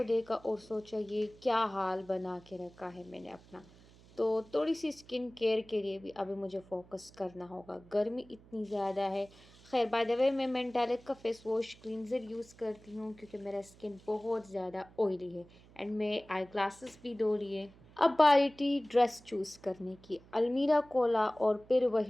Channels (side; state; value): right; noise; hum, 24 dB below the sound